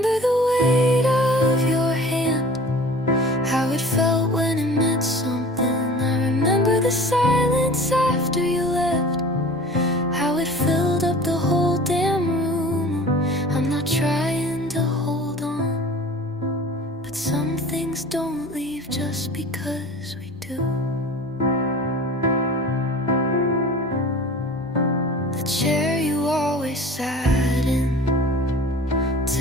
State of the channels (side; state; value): both; normal; correlation 0.42